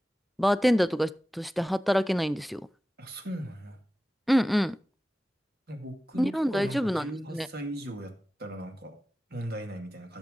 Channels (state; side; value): normal; both; correlation 0.95